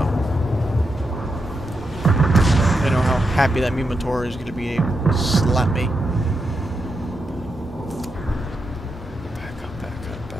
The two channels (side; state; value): both; normal; correlation 0.85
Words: I know how happy that Minotaur is going to be able to slap me. Back up, back up,